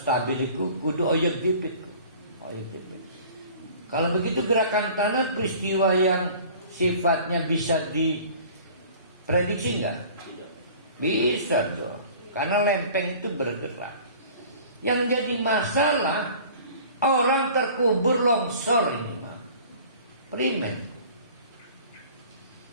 stabil itu kudu oyek dipit. Kalau begitu gerakan tanah peristiwa yang sifatnya bisa diprediksi enggak? Bisa dong. Karena lempeng itu bergerak. Yang jadi masalah orang terkubur longsor ini mah. Primen.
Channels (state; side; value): inverted; both; correlation -0.47